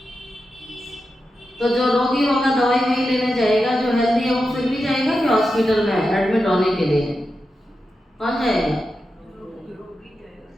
तो जो रोगी होगा दवाई वही लेने जाएगा, जो हेल्दी है वो फिर भी जाएगा कि हॉस्पिटल में एडमिट होने के लिए? कौन जाएगा?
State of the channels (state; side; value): normal; both; correlation 0.89